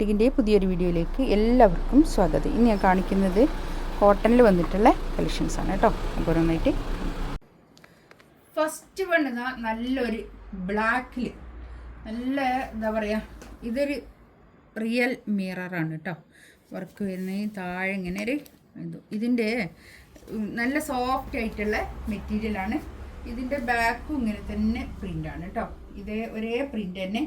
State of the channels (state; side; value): identical; both; correlation 1.00